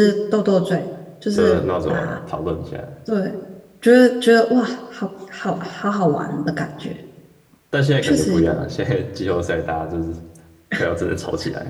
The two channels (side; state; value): both; identical; correlation 1.00